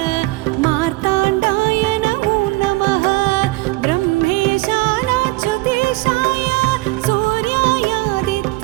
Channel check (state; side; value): quieter; left; 21.2 dB